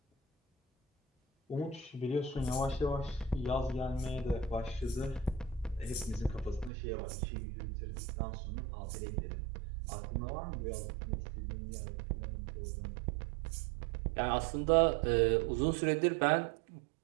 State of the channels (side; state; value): left; drops out; at 6.7 s